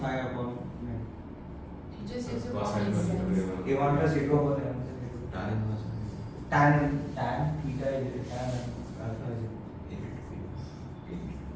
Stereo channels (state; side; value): identical; both; correlation 1.00